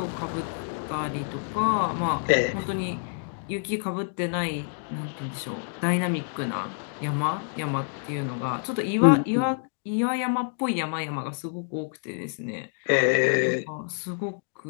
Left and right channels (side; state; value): right; silent; digital silence